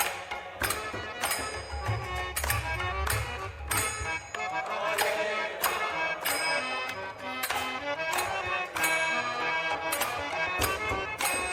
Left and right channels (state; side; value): identical; both; correlation 1.00